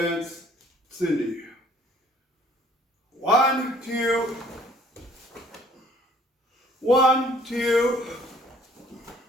Cindy. 1, 2. 1, 2.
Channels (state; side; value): normal; both; correlation 0.57